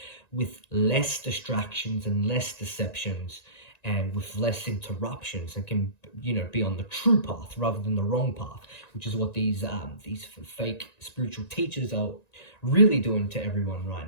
with less distractions and less deceptions and with less interruptions, and can be on the true path rather than the wrong path, which is what these fake spiritual teachers are really doing to everyone right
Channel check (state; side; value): late; right; 1.9 ms